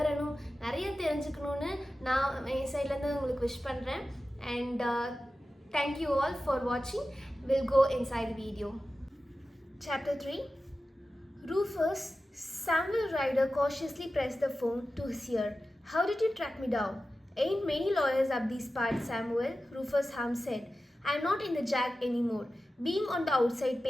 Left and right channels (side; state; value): both; normal; correlation 0.94